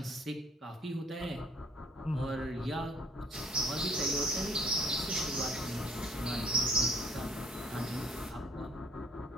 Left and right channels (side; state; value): both; normal; correlation 0.59